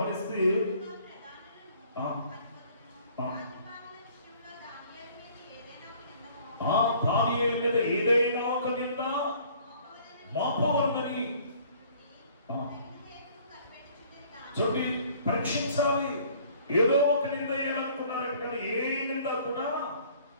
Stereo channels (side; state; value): both; inverted; correlation -0.55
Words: దానియేలు మీద ఏదైనా ఒక నింద మోపవలనని చూడండి, పరీక్షించాలి. ఏదో ఒక నింద వేయాలనుకున్నారట, కానీ ఏ నింద కూడా